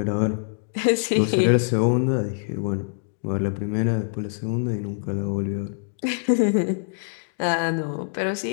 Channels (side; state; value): right; silent; digital silence